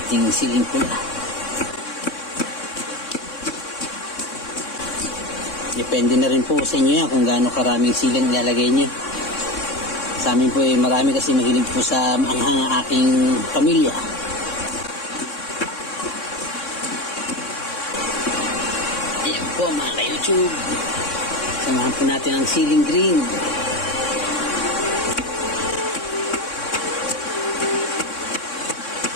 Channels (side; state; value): right; late; 3.6 ms